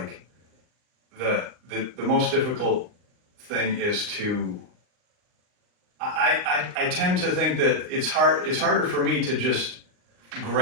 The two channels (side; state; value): left; late; 39 ms